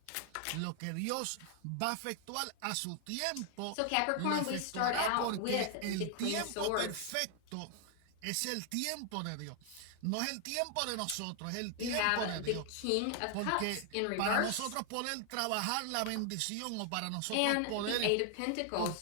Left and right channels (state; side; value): different; both; correlation 0.00